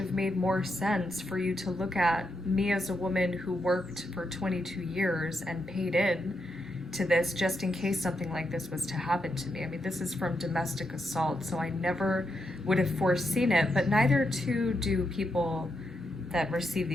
made more sense for you to look at me as a woman who worked for 22 years and paid in to this just in case something like this was to happen to me. I mean, this is from domestic assault, so I never would have foreseen it, but neither too do people that receive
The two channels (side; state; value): both; normal; correlation 0.83